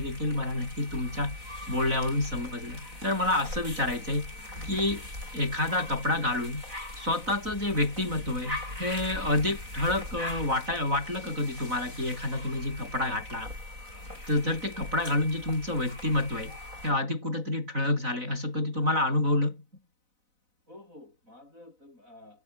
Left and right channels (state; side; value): late; left; 4.0 ms